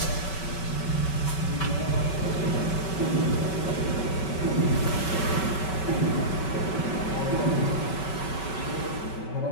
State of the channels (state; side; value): late; right; 5.3 ms